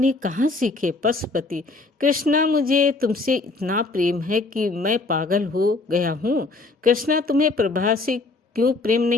कहाँ सीखे? पशुपति, कृष्णा, मुझे तुमसे इतना प्रेम है कि मैं पागल हो गया हूँ। कृष्णा, तुम्हें प्रभा से क्यों प्रेम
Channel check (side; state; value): right; quieter; 3.4 dB